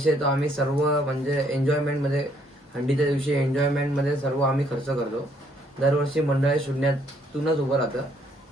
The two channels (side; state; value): both; normal; correlation 0.67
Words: येतो आम्ही सर्व म्हणजे एन्जॉयमेंटमध्ये, हंडीच्या दिवशी एन्जॉयमेंटमध्ये सर्व आम्ही खर्च करतो. दरवर्षी मंडळ 0तूनच उभं राहतं